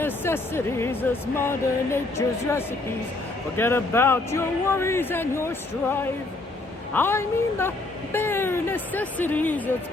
as Mother Nature's recipes. Forget about your worries and your strife. I mean the bare necessities. It's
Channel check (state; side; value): quieter; right; 3.0 dB